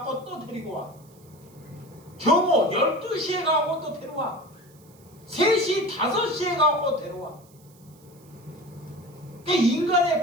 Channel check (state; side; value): noise; right; hiss, 28 dB below the sound